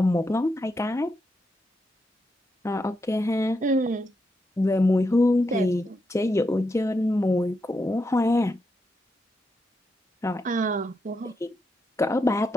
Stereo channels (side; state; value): both; normal; correlation 0.83